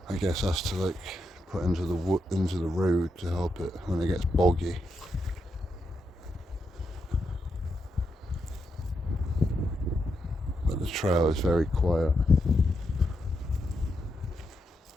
I guess that's to like put into the road to help it when it gets boggy. But the trail is very quiet.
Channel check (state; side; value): normal; both; correlation 0.83